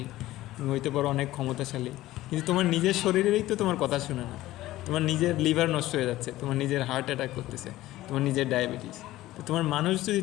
তুমি হইতে পারো অনেক ক্ষমতাশালী, কিন্তু তোমার নিজের শরীরেই তো তোমার কথা শুনে না। তোমার নিজের লিভার নষ্ট হয়ে যাচ্ছে, তোমার নিজের হার্ট অ্যাটাক করতেছে, তোমার নিজের ডায়াবেটিস। তো তোমার মানুষ যদি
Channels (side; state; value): right; quieter; 16.1 dB